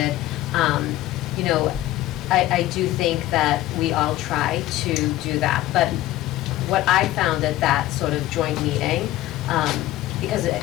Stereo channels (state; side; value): quieter; right; 15.2 dB